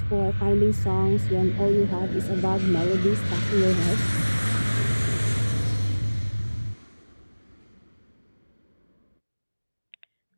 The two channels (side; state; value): both; inverted; correlation -1.00